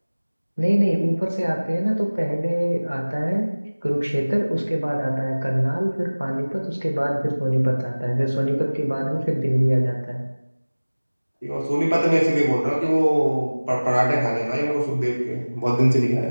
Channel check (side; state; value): both; inverted; correlation -1.00